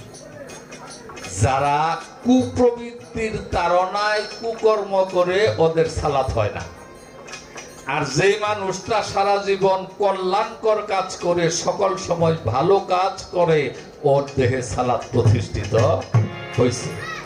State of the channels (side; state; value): both; identical; correlation 1.00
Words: যারা কুপ্রবৃত্তির তাড়নায় কুকর্ম করে ওদের সালাত হয় না। আর যে মানুষটা সারা জীবন কল্যাণকর কাজ করে, সকল সময় ভালো কাজ করে, ওর দেহে সালাত প্রতিষ্ঠিত হয়েছে।